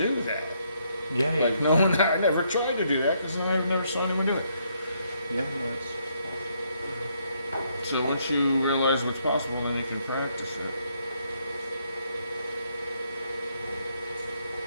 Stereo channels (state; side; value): inverted; both; correlation -0.73